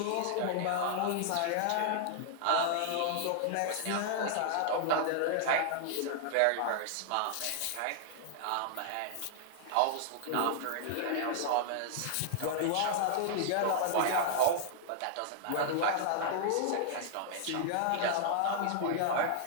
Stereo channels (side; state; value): both; different; correlation -0.01